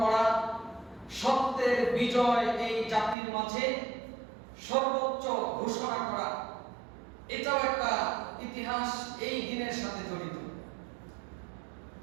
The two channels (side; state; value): left; drops out; at 3.2 s